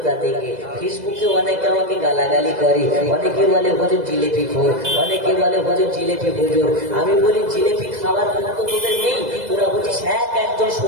থেকে। ফেসবুকে অনেকে আমাকে গালাগালি করে, অনেকে বলে হুজুর জিলেপি খোর, অনেকে বলে হুজুর জিলেপি হুজুর। আমি বলি জিলেপি খাবার কোনো তো তোদের নেই, তোরা বলছিস একজন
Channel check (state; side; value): late; left; 2.0 ms